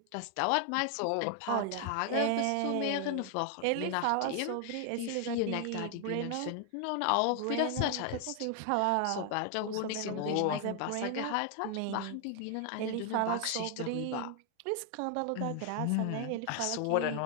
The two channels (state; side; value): different; both; correlation 0.00